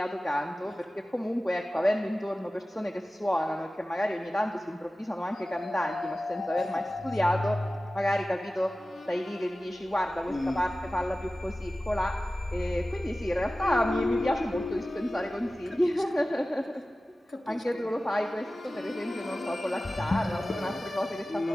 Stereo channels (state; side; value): normal; both; correlation 0.96